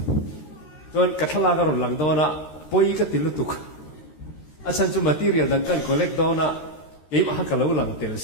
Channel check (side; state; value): right; late; 13 ms